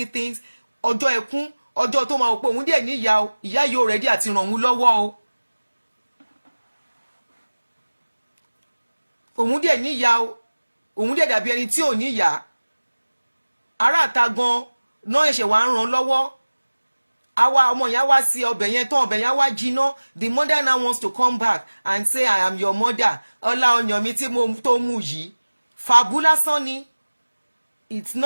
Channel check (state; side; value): inverted; both; correlation -1.00